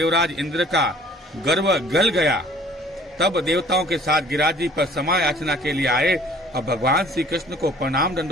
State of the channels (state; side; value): normal; both; correlation 0.53